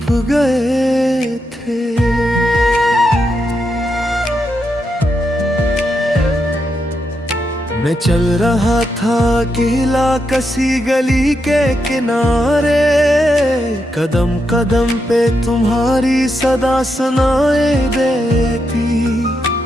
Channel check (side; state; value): both; normal; correlation 0.83